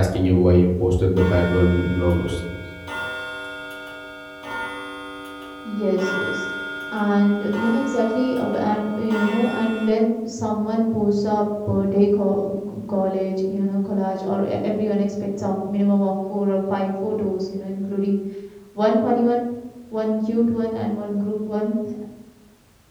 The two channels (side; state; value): both; identical; correlation 1.00